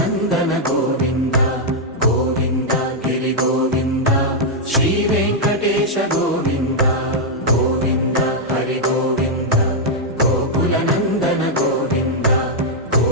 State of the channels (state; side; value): normal; both; correlation -0.04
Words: గోవింద గోవింద గిరి గోవింద శ్రీ వెంకటేశ గోవింద గోవింద హరి గోవింద గోకుల నందన గోవింద